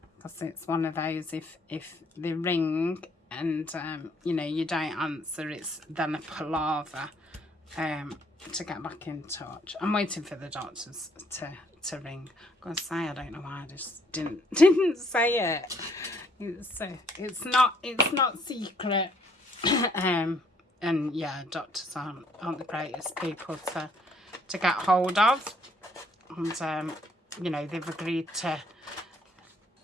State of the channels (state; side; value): normal; both; correlation 0.65